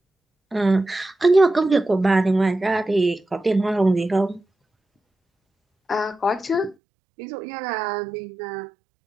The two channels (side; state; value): left; drops out; at 6.8 s